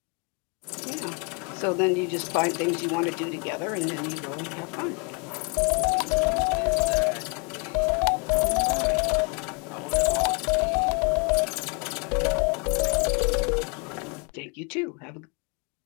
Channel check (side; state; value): right; quieter; 34.2 dB